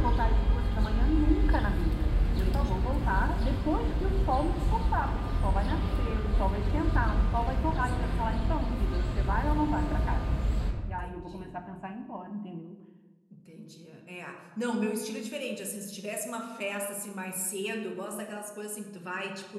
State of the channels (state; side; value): identical; both; correlation 1.00